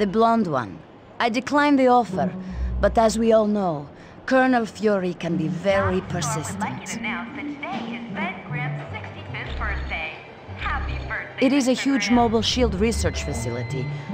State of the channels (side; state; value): both; identical; correlation 1.00